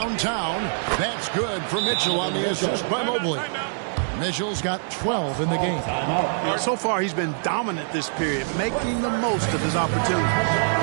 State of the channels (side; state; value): left; silent; 62 dB below the other